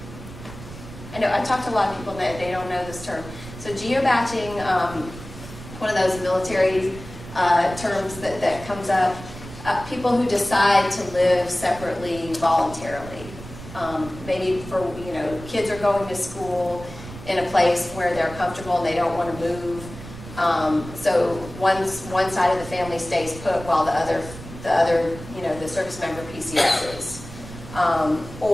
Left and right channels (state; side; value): noise; right; rumble, 14 dB below the sound